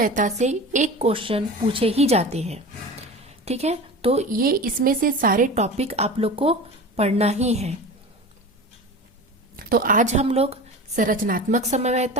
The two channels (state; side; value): normal; both; correlation 0.32